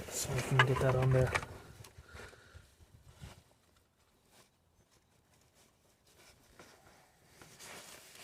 so we can get that on there.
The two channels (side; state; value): both; identical; correlation 1.00